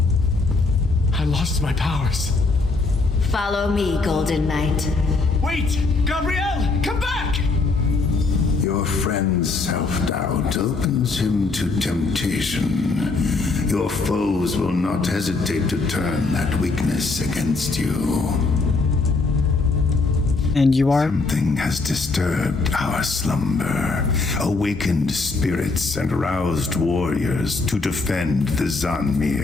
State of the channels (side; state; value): right; quieter; 3.8 dB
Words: I lost my powers. Follow me, Golden Knight. Wait! Gabrielle! Come back! Your friend's self-doubt opens him to temptation. Your foes will not hesitate to turn that weakness against you. And you are? Something has disturbed our slumber, awakened spirits and roused warriors to defend the